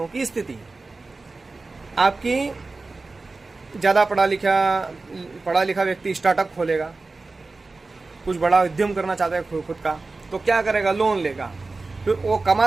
की स्थिति। आपकी ज़्यादा पढ़ा लिखा व्यक्ति स्टार्टअप खोलेगा, कुछ बड़ा उद्यम करना चाहता है खुद का, तो क्या करेगा? लोन लेगा, फिर वो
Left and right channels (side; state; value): left; quieter; 3.6 dB